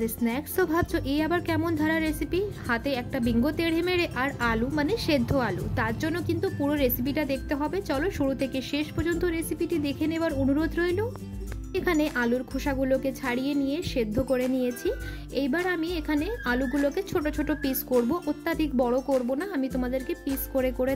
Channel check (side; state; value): both; identical; correlation 1.00